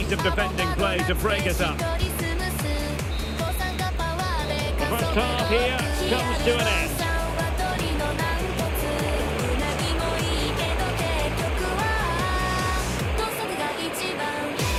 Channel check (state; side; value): identical; both; correlation 1.00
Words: of defending play to break it up. The first half here comes to an end.